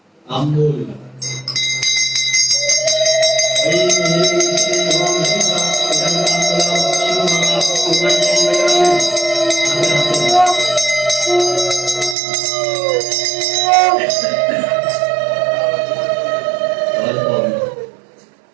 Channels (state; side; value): drops out; left; at 12.2 s